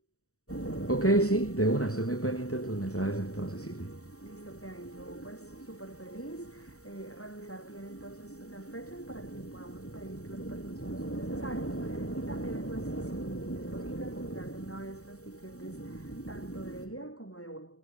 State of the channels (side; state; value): right; late; 0.65 ms